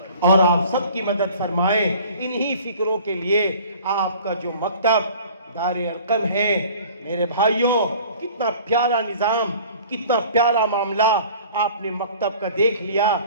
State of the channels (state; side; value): inverted; both; correlation -0.47